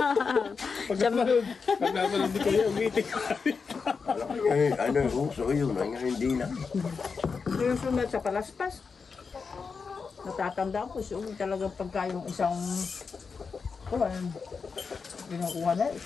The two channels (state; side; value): quieter; right; 5.2 dB